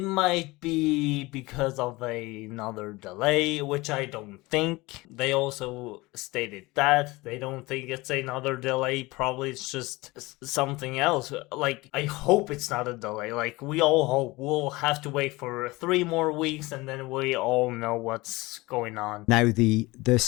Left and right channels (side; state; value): right; quieter; 21.8 dB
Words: might be because of another delay, which I don't think. They also stated that they don't think it's another delay. Probably it's just something else. Like, I hope it's not a delay. Like, we all hope. We'll have to wait for 3 more weeks, and then we all know what's going on. Now, the